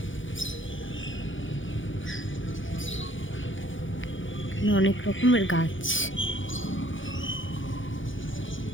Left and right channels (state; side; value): late; right; 0.56 ms